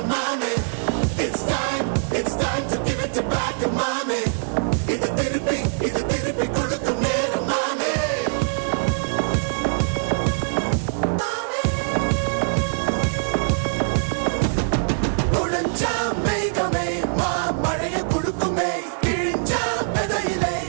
மாமே. It's time to give it back to mommy. இது திருப்பி கொடுக்கும் நேரம் மாமே. உடைஞ்சா மேகமே மழையை குடுக்குமே, கிழிஞ்சா விதையிலே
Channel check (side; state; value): left; silent; 63 dB below the other